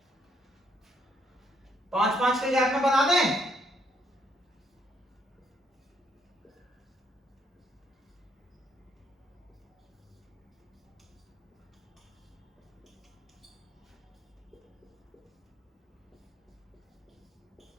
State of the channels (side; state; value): both; normal; correlation 0.72